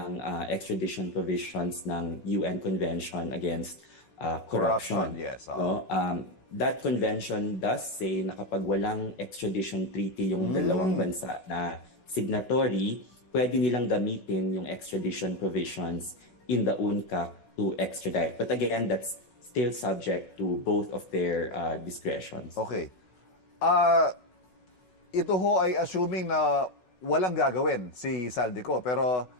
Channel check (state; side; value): late; right; 5.4 ms